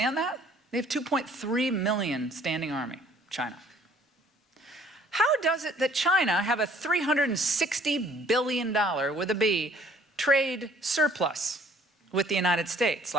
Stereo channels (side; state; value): both; normal; correlation 0.58